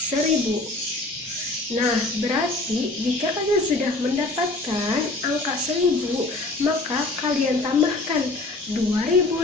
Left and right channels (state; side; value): quieter; right; 3.0 dB